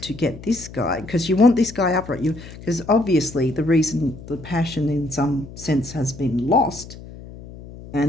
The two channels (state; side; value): noise; left; hum, 15 dB below the sound